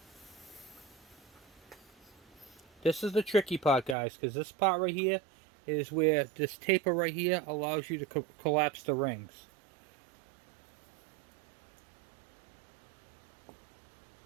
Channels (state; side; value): drops out; left; at 4.0 s